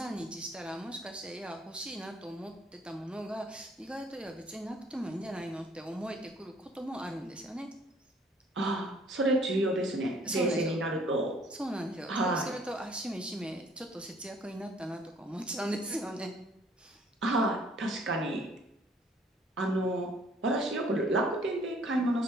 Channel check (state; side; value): normal; both; correlation 0.59